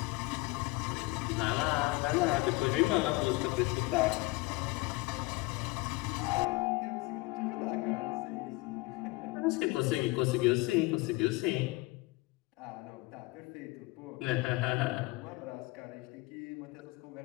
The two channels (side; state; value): right; quieter; 22.8 dB